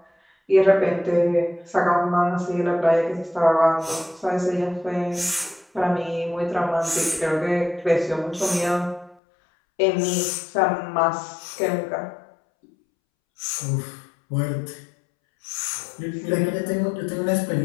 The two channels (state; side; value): drops out; right; at 9.2 s